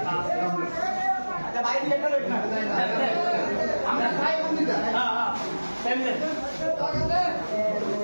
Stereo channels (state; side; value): inverted; both; correlation -1.00